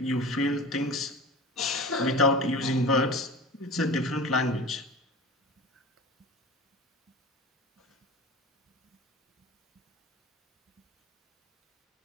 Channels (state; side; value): normal; both; correlation 0.34